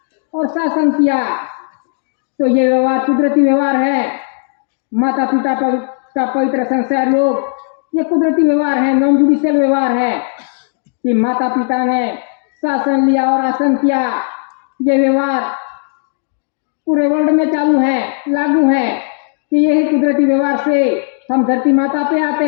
और शासन किया। तो ये व्यवहार कुदरती व्यवहार है। माता पिता का पवित्र संस्कार योग ये कुदरती व्यवहार है, नॉन जुडिशियल व्यवहार है कि माता पिता ने शासन लिया और आसन किया। ये व्यवहार पूरे वर्ल्ड में चालू है, लागू है कि यही कुदरती व्यवहार से हम धरती माता पे आते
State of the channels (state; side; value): silent; right; 56 dB below the other